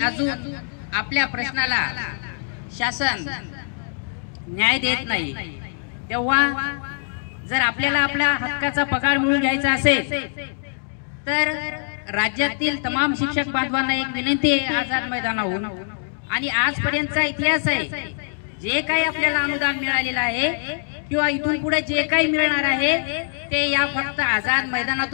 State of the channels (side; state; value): right; silent; digital silence